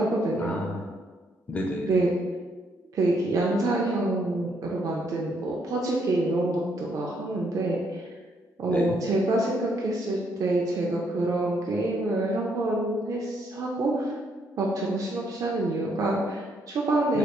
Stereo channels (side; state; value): both; normal; correlation 0.72